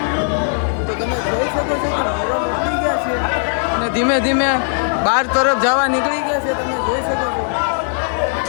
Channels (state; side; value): silent; right; 67 dB below the other